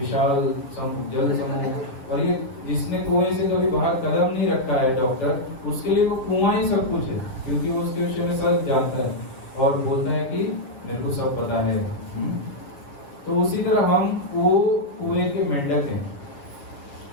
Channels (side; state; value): right; late; 7.1 ms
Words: जल समूह। और ये जिसने कुएं से कभी बाहर कदम नहीं रखा है डॉक्टर, उसके लिए वो कुआं ही सब कुछ है, क्योंकि वो उसके विषय में सब जानता है और बोलता है कि मेरे को सब पता है। तो उसी तरह हम वो कुएं के मेंढक हैं।